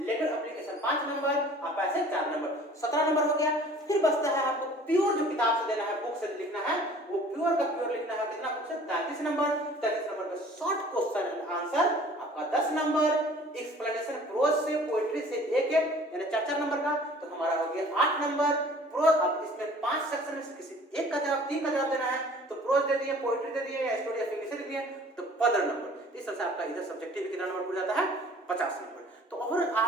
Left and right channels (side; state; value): both; normal; correlation 0.50